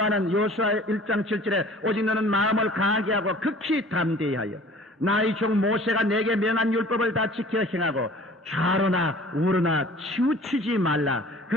여호수아 1장 7절에 오직 너는 마음을 강하게 하고 극히 담대히 하여 나의 종 모세가 내게 명한 율법을 다 지켜 행하고 좌로나 우로나 치우치지 말라.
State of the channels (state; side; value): normal; both; correlation 0.48